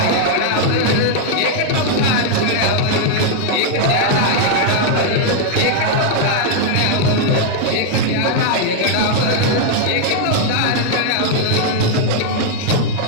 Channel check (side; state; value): both; different; correlation 0.00